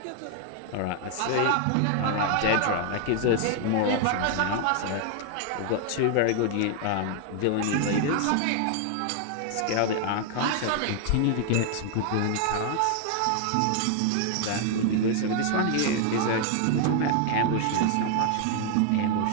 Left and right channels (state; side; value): different; both; correlation 0.00